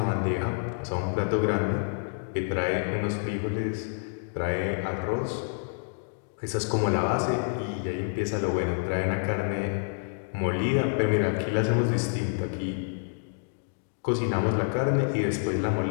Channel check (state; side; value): silent; right; digital silence